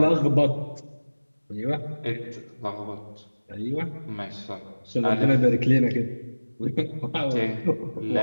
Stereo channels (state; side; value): inverted; both; correlation -1.00